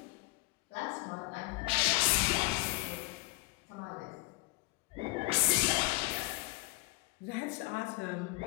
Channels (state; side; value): quieter; right; 21.6 dB